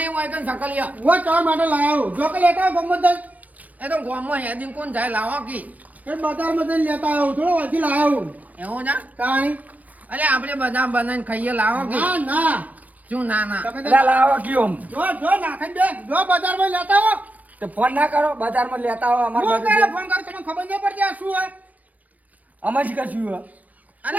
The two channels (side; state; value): left; late; 0.077 ms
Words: હોય કે સકલિયા હું ચા માટે લાવ્યો જો કે લેતા ગમત એ તો ગોમમાં હેદી કોણ જાય લાવો કે એ બજારમાં જઈને લેતા આવ્યો થોડો વાંચી લાવ્યો એવું છે કાંઈ અરે આપણે બધા બનાવીને ખાઈએ લાવો કે ના ના શું ના ના તમે એટલે લાવો કયો જો નાખી દે જો બજારમાં લેતા આવો તો ફોન ના કરો બજારમાં લેતા આવો અમાર હું બાજુ કરે ફોન કર તમને ખબર નહીં પડતી આ શું હોય અમે જ કશું હે.